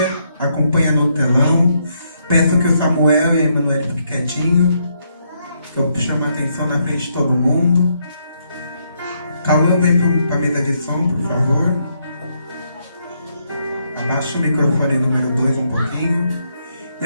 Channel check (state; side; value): inverted; both; correlation -0.76